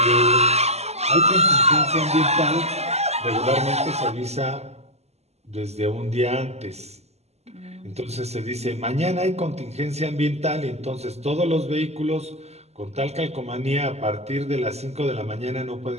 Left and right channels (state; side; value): late; left; 0.31 ms